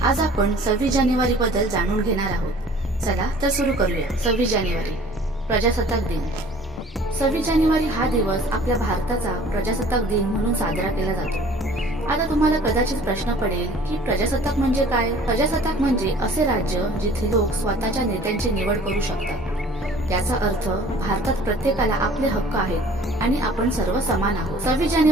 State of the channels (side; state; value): both; normal; correlation 0.50